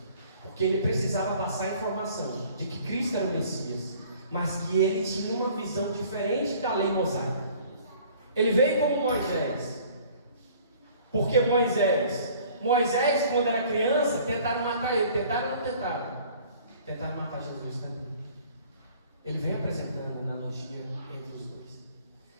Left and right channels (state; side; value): inverted; both; correlation -0.52